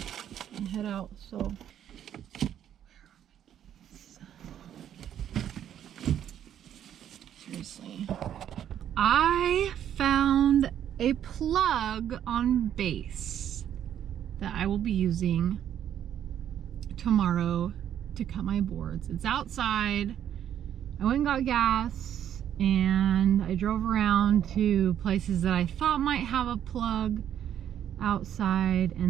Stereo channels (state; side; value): quieter; left; 10.1 dB